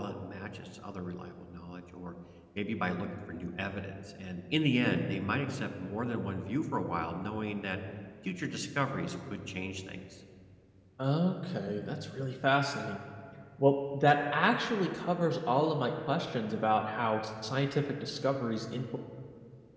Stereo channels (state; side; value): identical; both; correlation 1.00